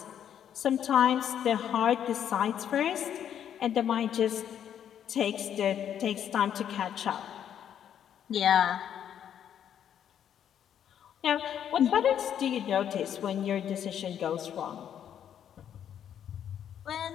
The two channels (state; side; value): quieter; right; 9.5 dB